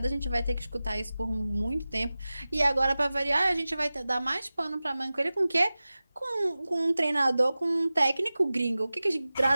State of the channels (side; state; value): both; inverted; correlation -0.97